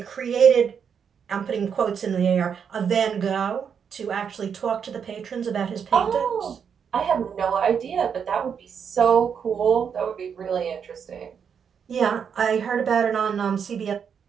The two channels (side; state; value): left; quieter; 7.2 dB